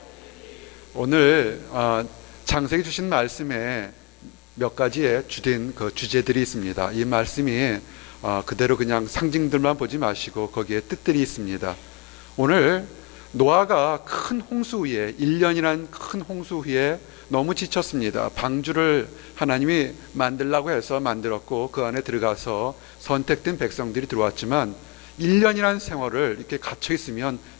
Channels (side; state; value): right; quieter; 27.9 dB